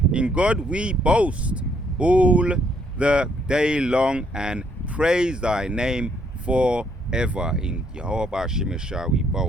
In God we boast all the day long, and praise thy name forever. In Yahawashi we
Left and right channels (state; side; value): normal; both; correlation 0.70